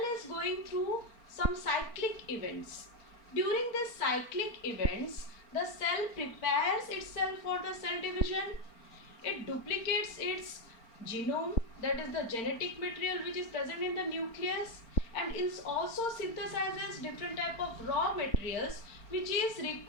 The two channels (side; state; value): right; late; 4.4 ms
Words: is going through some cyclic events. During these cyclic events, the cell prepares itself for the cell division. It duplicates its genome, that is the genetic material which is present in the nucleus, and it also synthesizes different type of raw materials which is